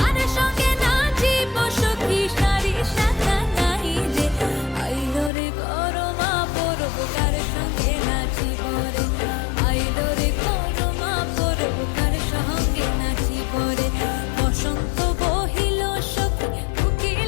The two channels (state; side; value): drops out; right; at 5.3 s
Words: সঙ্গে নাচিব সখী সারি শাখা নাই রে। আইলো রে করমা পরব কার সঙ্গে নাচিব রে, আইলো রে করমা পরব কার সঙ্গে নাচিব রে। বসন্ত বহিল সখী